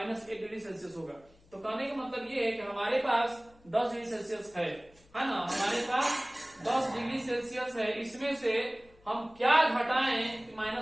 डिग्री सेल्सियस होगा। तो कहने का मतलब ये है कि हमारे पास 10 डिग्री सेल्सियस है ना, हमारे पास 10 डिग्री सेल्सियस है। इसमें से हम क्या घटाएं कि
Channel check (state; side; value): noise; left; hum, 29 dB below the sound